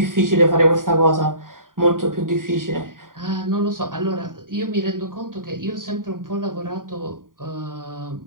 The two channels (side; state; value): left; late; 0.90 ms